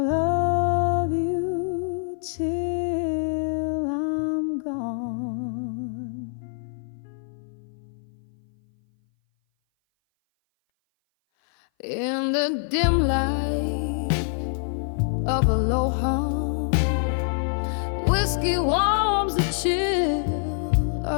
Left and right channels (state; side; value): silent; right; 57 dB below the other